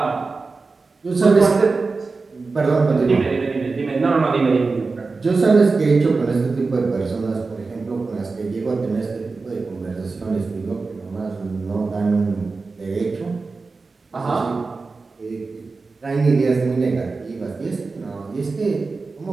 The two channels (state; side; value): quieter; left; 4.1 dB